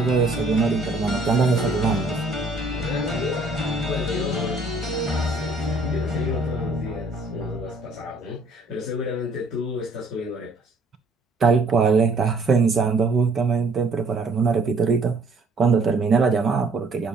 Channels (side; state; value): left; quieter; 3.0 dB